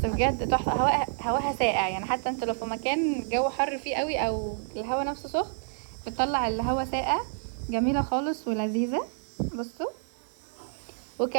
بجد تحفة. هواها ساقع، يعني حتى انت لو في مكان جو حر فيه قوي او الهوا نفسه سخن بتطلع الهوا ساقع. جميلة خالص ولذيذة. بصوا،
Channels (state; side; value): silent; left; 59 dB below the other